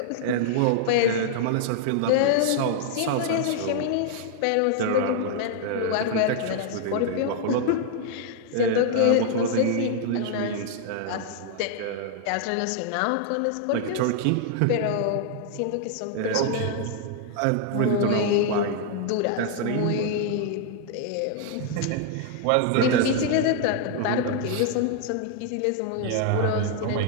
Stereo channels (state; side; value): different; both; correlation 0.00